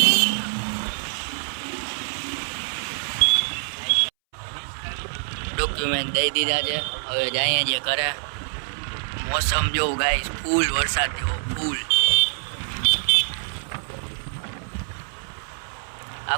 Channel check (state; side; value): silent; left; 62 dB below the other